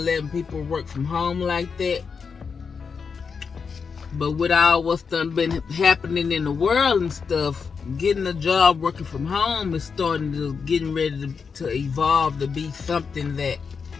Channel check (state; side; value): quieter; right; 5.7 dB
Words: letting people work from home like that. But with all what's done been happening in the world and stuff, getting a job working from home is getting ready to evolve to be something that